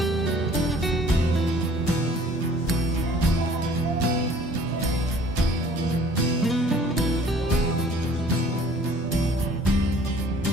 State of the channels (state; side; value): normal; both; correlation 0.53